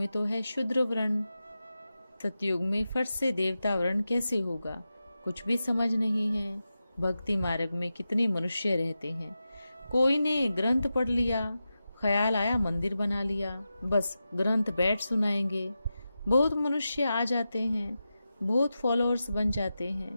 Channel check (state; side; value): inverted; both; correlation -0.91